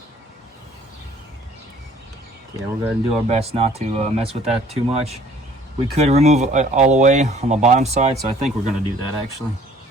yeah, we're going to do our best not to mess with that too much. We could remove it all the way on the bottom side, so I think we're going to do that actually.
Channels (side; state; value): both; normal; correlation 0.56